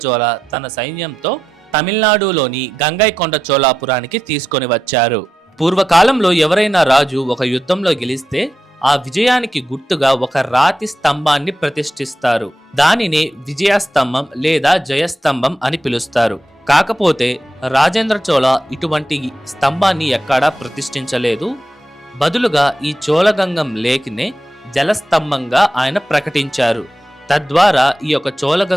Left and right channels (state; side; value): normal; both; correlation 0.88